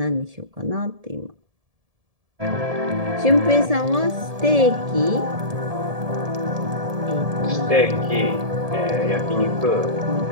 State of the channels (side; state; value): left; late; 1.7 ms